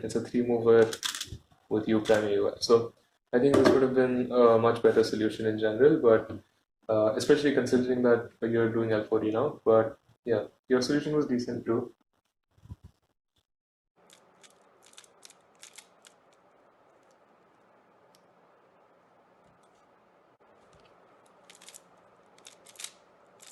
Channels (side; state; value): both; identical; correlation 1.00